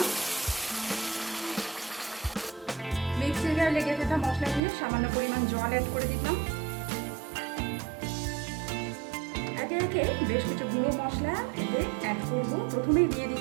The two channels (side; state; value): left; drops out; at 4.6 s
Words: মিক্সির গায়ে লেগে থাকা মশলা দিয়ে সামান্য পরিমাণ জল অ্যাড করে দিলাম। একে একে বেশ কিছু গুঁড়ো মশলা এতে অ্যাড করব। প্রথমেই দিয়ে